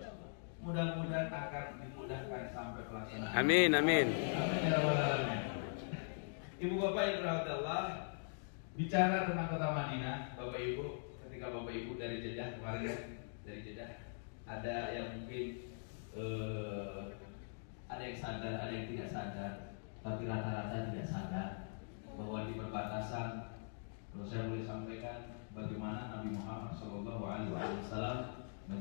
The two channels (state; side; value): silent; right; digital silence